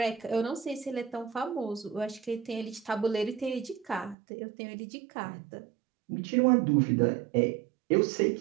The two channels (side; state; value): left; drops out; at 4.2 s